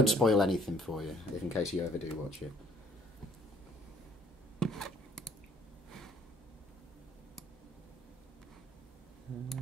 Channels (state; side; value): normal; both; correlation 0.61